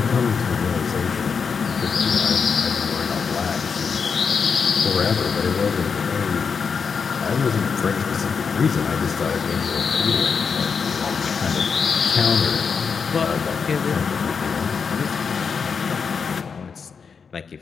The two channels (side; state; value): right; quieter; 5.9 dB